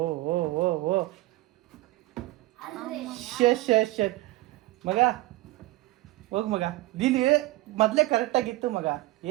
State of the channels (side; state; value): left; quieter; 18.9 dB